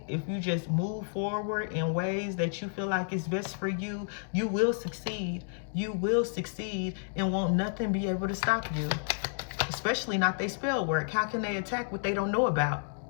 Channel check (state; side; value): silent; right; digital silence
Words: if you just move forward in ways that you feel like is best for you, you will succeed. You will succeed, and won't nothing be able to stop you. Especially not their spell work. How can they attack what they don't know about?